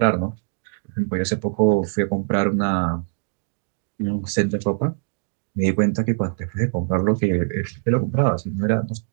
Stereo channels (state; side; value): silent; left; digital silence